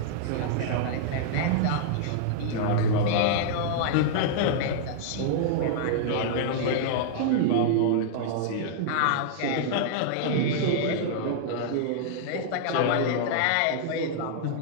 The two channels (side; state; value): both; different; correlation -0.01